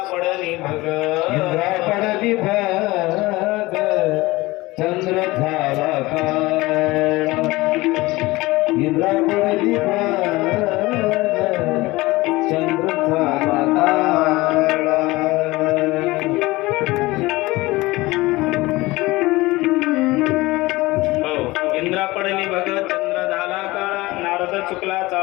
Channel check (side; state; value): right; quieter; 20.6 dB